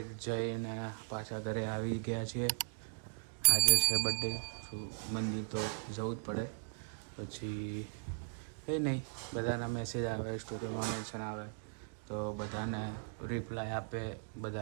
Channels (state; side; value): silent; left; digital silence